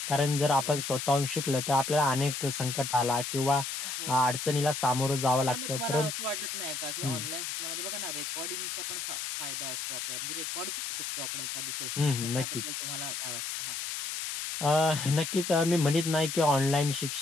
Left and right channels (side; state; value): left; noise; hiss, 4 dB below the sound